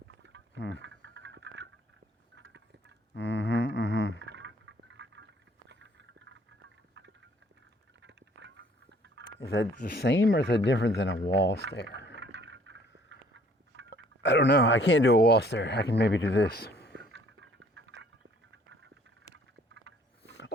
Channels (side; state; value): both; normal; correlation 0.58